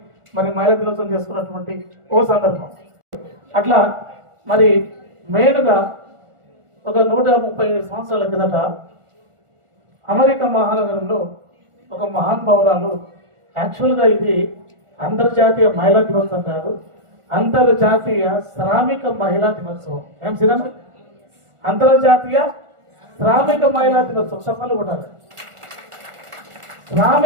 మరి మహిళా దినోత్సవం చేసుకున్నటువంటి ఓ సందర్భం. అట్లా మరి మెయిన్గా ఒక 137 సంవత్సరాల కిందట అమెరికా మహానగరంలో ఒక మహానుభావురాలు, యాక్చువల్గా ఇది అంతర్జాతీయ మహిళా దినోత్సవం కాదు, అంతర్జాతీయ శ్రామిక మహిళా దినోత్సవం. ఏం సినిమా? అంతర్జాతీయ శ్రామిక మహిళా దినోత్సవం. సఫలు కూడా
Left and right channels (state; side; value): late; left; 1.4 ms